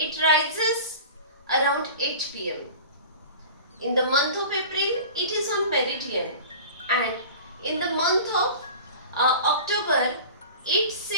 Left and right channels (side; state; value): both; inverted; correlation -0.38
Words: rises around 8 p.m. In the month of April, it is on meridian, and in the month of October, it